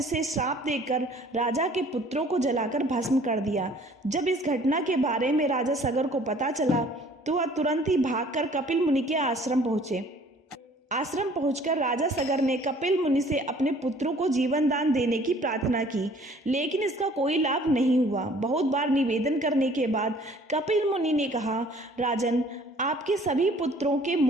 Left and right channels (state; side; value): normal; both; correlation 0.54